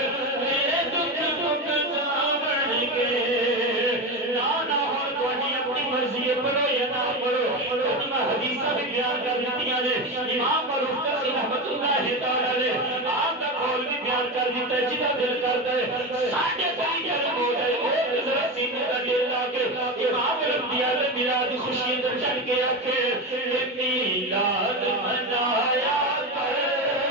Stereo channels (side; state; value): both; normal; correlation 0.19